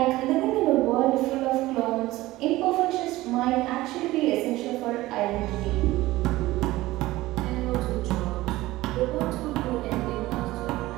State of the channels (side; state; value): left; quieter; 17.8 dB